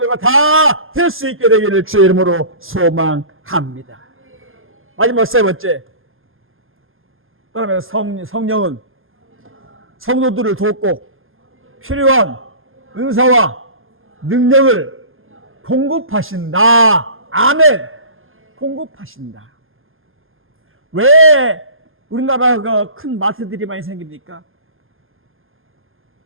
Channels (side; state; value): left; late; 0.59 ms